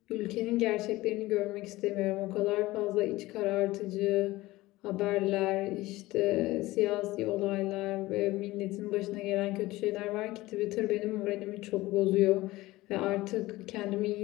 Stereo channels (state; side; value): quieter; right; 18.7 dB